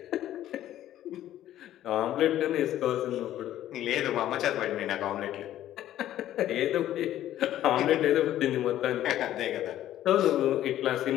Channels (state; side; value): quieter; right; 12.7 dB